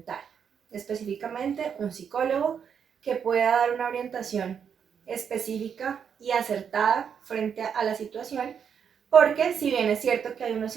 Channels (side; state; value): left; quieter; 7.4 dB